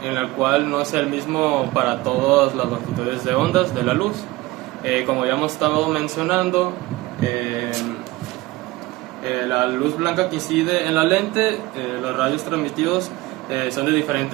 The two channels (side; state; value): left; quieter; 19.5 dB